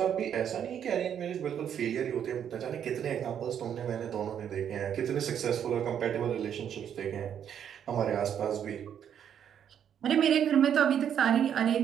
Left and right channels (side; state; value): left; quieter; 8.9 dB